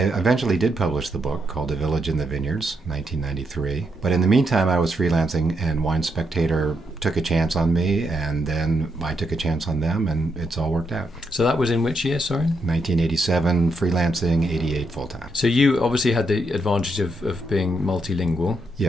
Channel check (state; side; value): normal; both; correlation 0.79